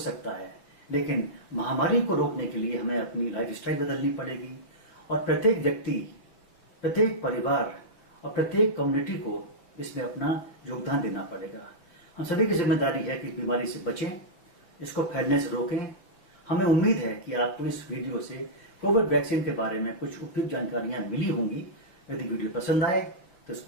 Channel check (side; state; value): right; late; 5.6 ms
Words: है, लेकिन महामारी को रोकने के लिए हमें अपनी लाइफस्टाइल बदलनी पड़ेगी और प्रत्येक व्यक्ति, प्रत्येक परिवार और प्रत्येक कम्युनिटी को इसमें अपना योगदान देना पड़ेगा। हम सभी की जिम्मेदारी है कि इस बीमारी से बचें, इसको फैलने से रोकें। हमें उम्मीद है कि आपको इस वीडियो से कोविड वैक्सीन के बारे में कुछ उपयुक्त जानकारियां मिली होंगी। यदि वीडियो पसंद आए तो